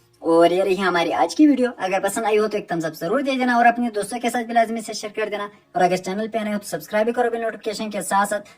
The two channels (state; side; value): identical; both; correlation 1.00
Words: और ये रही हमारी आज की वीडियो। अगर पसंद आई हो तो एक थम्स अप जरूर दे देना और अपने दोस्तों के साथ भी लाजमी से शेयर कर देना। और अगर चैनल पे आए हो तो सब्सक्राइब भी करो बिल नोटिफिकेशन के साथ